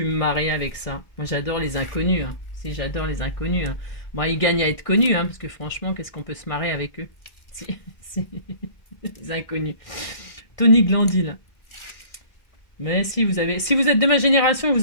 me marrer avec ça? Moi, j'adore les inconnus. Hein. Si, j'adore les inconnus. Hein. Bon, ils gagnent à être connus, hein, parce que franchement, qu'est-ce qu'on peut se marrer avec eux? C'est des inconnus. Tony Glandy, là. Mais si vous êtes de ma génération,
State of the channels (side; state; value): right; late; 1.6 ms